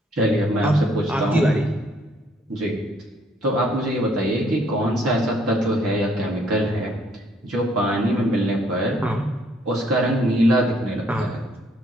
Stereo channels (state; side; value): normal; both; correlation 0.66